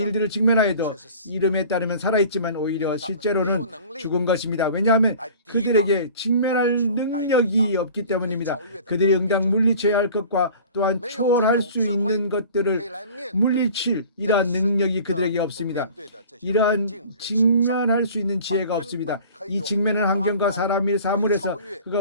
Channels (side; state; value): both; inverted; correlation -0.44